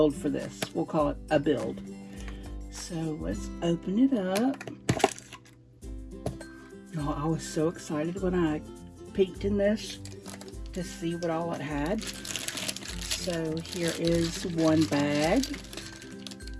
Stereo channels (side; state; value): both; identical; correlation 1.00